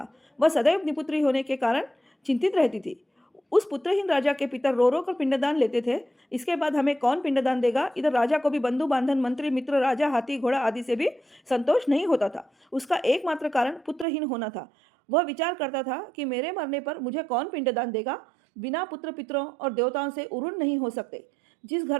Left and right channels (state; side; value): drops out; left; at 14.1 s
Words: वह सदैव निपुत्री होने के कारण चिंतित रहती थी। उस पुत्रहीन राजा के पितर रो रो कर पिंडदान लेते थे। इसके बाद हमें कौन पिंडदान देगा? इधर राजा को भी बंधु बांधन, मंत्री, मित्र, राजा, हाथी, घोड़ा आदि से भी संतोष नहीं होता था। उसका एकमात्र कारण पुत्रहीन होना था। वह विचार करता था कि मेरे मरने पर मुझे कौन पिंडदान देगा? बिना पुत्र पितरों और देवताओं से उरुण नहीं हो सकते। जिस